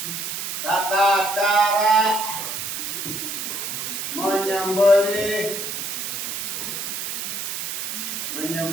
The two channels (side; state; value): right; noise; hiss, 4 dB below the sound